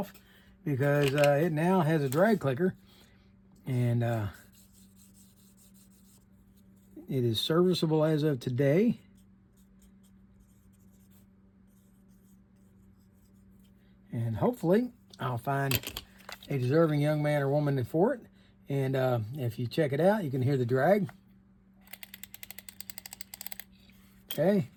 because it now has a drag clicker. And it is serviceable as of today. And hopefully I'll find a deserving young man or woman for it. And if you check it out, you can hear the drag. Okay.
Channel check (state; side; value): identical; both; correlation 1.00